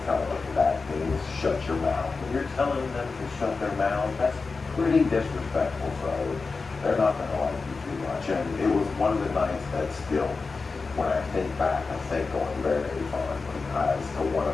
telling me that means shut your mouth. When you're telling them to shut their mouth, that's pretty disrespectful, so they're not going to like you too much. And it was one of the nights that still, when I think back, I think going very, very fondly as to one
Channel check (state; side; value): quieter; right; 4.3 dB